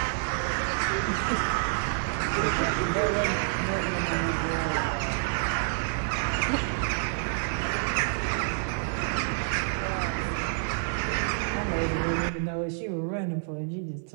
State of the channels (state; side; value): silent; left; 59 dB below the other